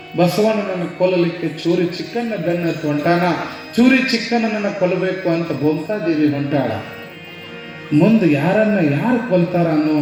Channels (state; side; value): identical; both; correlation 1.00